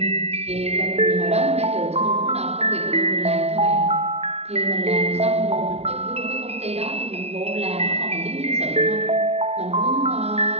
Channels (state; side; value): late; left; 0.30 ms